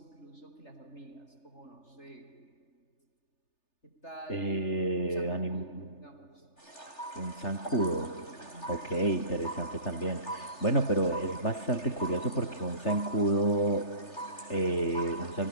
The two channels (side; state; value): right; late; 3.3 ms